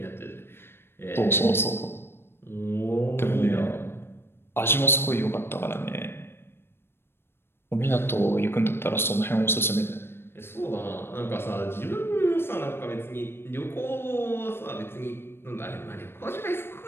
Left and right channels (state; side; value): late; right; 0.11 ms